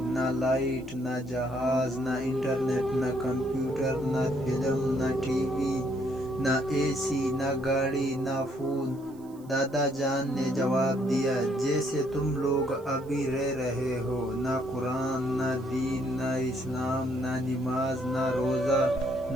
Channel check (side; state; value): right; noise; hiss, 28 dB below the sound